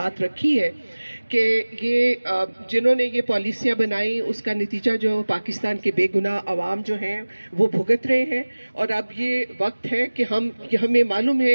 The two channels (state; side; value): inverted; both; correlation -1.00